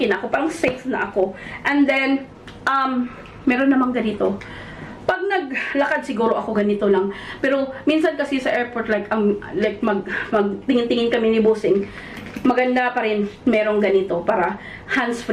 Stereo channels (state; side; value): identical; both; correlation 1.00